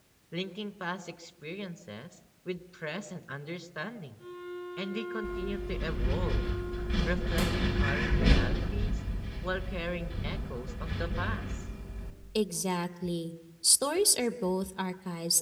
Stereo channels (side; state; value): both; identical; correlation 1.00